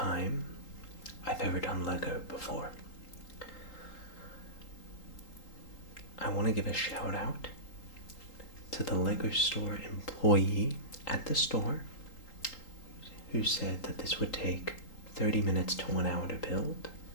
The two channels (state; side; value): late; right; 3.8 ms